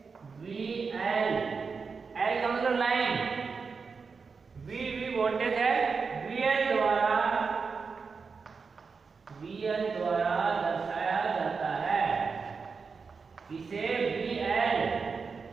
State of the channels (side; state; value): left; quieter; 5.1 dB